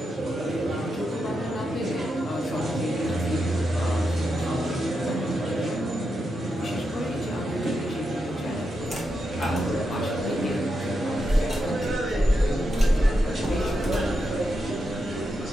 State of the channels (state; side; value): normal; both; correlation 0.85